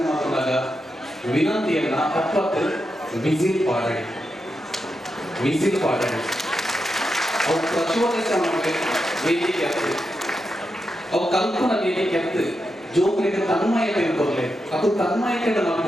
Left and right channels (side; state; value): both; normal; correlation 0.87